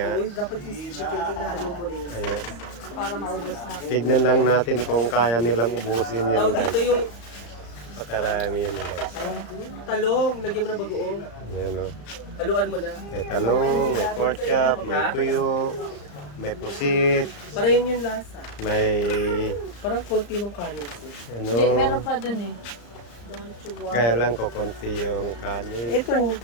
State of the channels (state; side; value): late; right; 34 ms